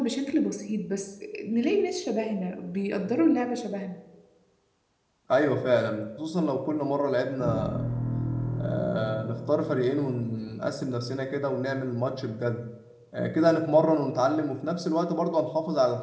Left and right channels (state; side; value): identical; both; correlation 1.00